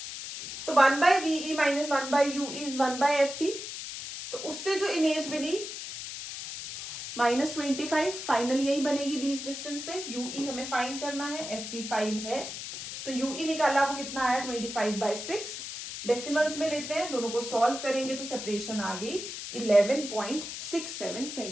तो 1 by v e minus 1 by u e is 1 by f e. तो उससे जो इमेज बनी -25, फाइनल यही बनेगी लीस्ट डिस्टेंस पे। यूई हमें फाइंड करना है, एफई 5 है, तो यूई निकाला वो कितना आया 25/6। डेसिमल्स में लेते हैं, दोनों को सॉल्व करेंगे तो सेपरेशन आ गई 11.67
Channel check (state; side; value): noise; left; hiss, 8 dB below the sound